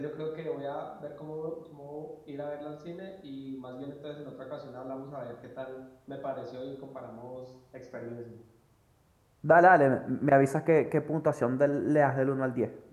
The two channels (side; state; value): both; identical; correlation 1.00